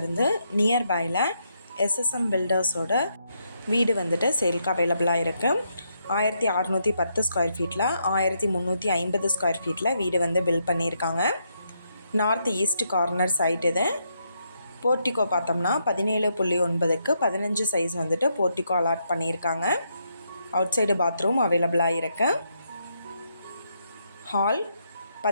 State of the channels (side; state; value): both; inverted; correlation -0.79